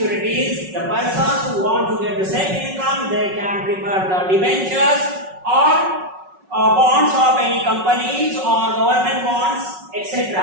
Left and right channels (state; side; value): late; left; 5.4 ms